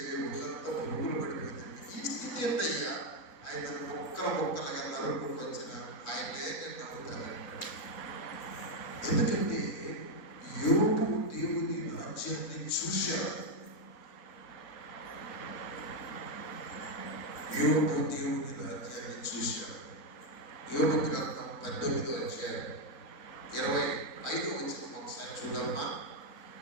ఒళ్ళంతా పురుగులు పడిపోతుంది. ఈ స్థితి ఏంటయ్యా? ఆయన ముక్కలుగా నరుకుంటూ వచ్చిన ఆయనే నేను నమ్ముతానంటాడు. ఎందుకంటే యోబు దేవుని రాజ్యాన్ని చూశాడు. యోబు దేవుని రాజ్యాన్ని చూశాడు. యోబు గ్రంథం 18వ అధ్యాయం 25వ వచనం ఒకసారి చూడమ్మా.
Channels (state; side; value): late; right; 3.9 ms